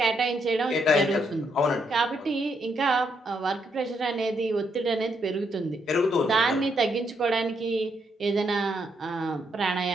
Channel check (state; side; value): normal; both; correlation 0.77